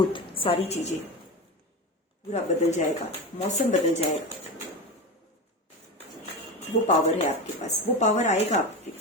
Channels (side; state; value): both; normal; correlation 0.23